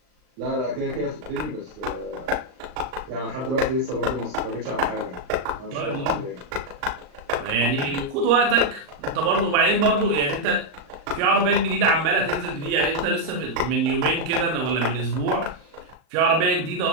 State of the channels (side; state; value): left; late; 39 ms